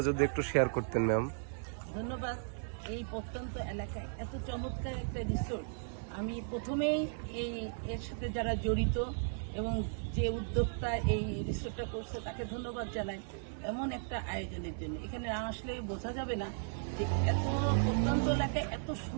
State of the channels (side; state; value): left; silent; digital silence